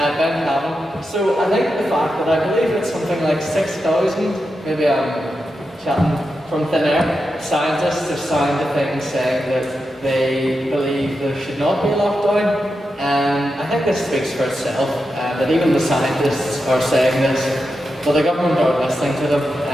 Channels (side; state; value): both; normal; correlation 0.88